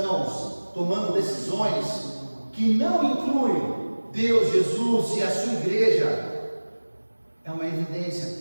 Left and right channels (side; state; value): both; inverted; correlation -1.00